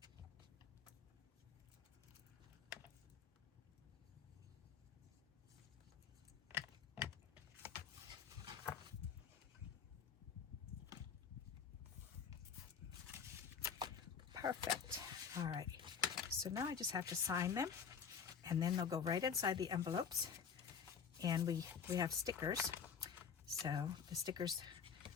perfect. All right, so now I just have to sign them, and then they'll go right inside the envelopes. And we have stickers, so the stickers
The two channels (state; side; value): quieter; right; 6.9 dB